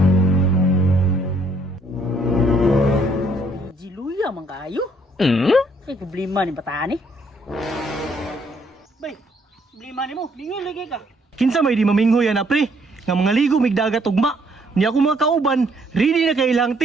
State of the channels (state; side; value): normal; both; correlation 0.67